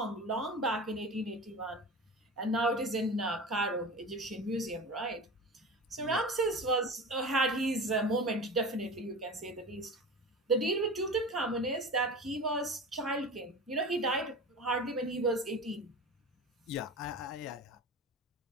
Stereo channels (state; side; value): normal; both; correlation 0.32